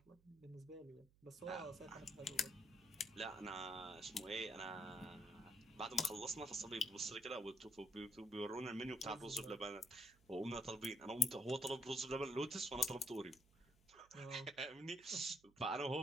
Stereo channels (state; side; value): noise; right; hum, 29 dB below the sound